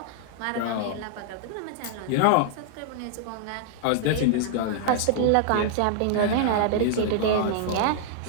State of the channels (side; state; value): both; different; correlation -0.01